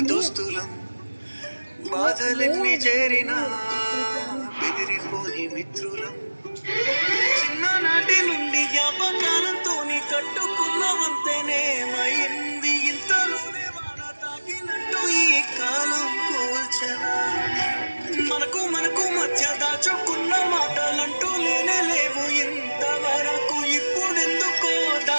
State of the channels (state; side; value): inverted; both; correlation -1.00